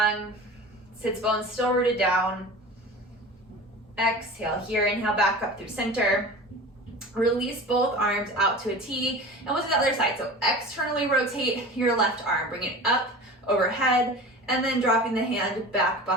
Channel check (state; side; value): normal; both; correlation 0.35